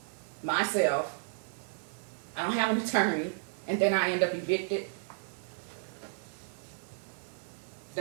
myself. I don't have an attorney, and then I end up evicted.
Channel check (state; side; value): silent; left; digital silence